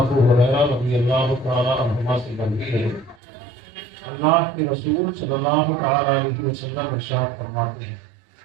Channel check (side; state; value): left; drops out; at 3.2 s